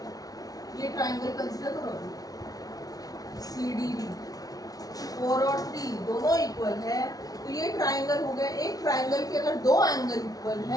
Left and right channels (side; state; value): right; late; 0.18 ms